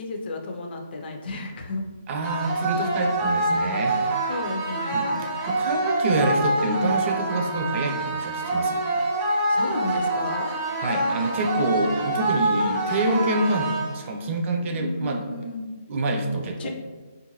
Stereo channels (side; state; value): both; inverted; correlation -0.64